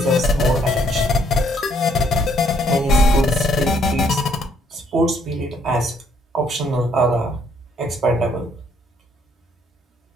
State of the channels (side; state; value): both; normal; correlation 0.68